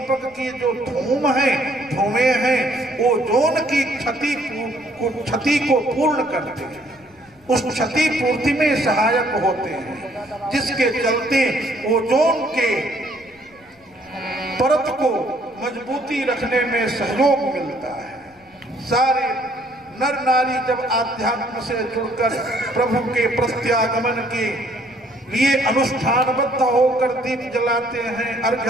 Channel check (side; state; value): left; noise; rumble, 30 dB below the sound